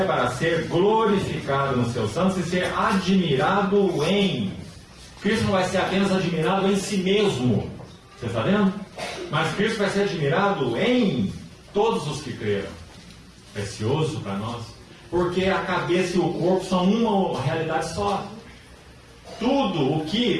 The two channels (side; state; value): both; identical; correlation 1.00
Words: para ser glorificado nos seus santos e ser admirado em... Cristo não vai ser apenas admirado em si mesmo, você está vendo? Mas Cristo vai ser admirado em todos os que creram. Precioso para nós, porque a cabeça e o corpo são uma realidade só. Tudo o